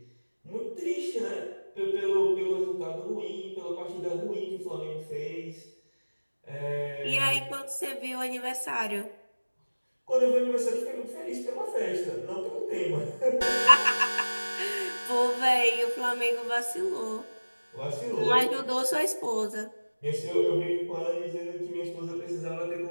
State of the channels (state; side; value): inverted; both; correlation -1.00